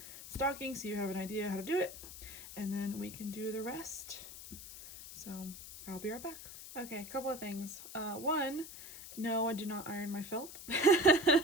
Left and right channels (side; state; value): left; noise; hiss, 13 dB below the sound